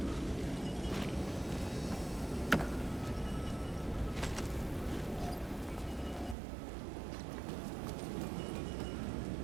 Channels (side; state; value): left; drops out; at 6.4 s